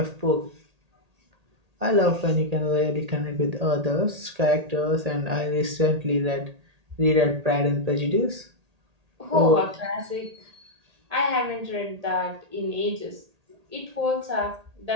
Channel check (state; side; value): late; left; 1.8 ms